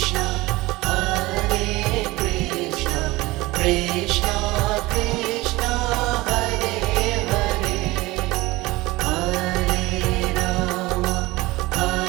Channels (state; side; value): quieter; left; 20.5 dB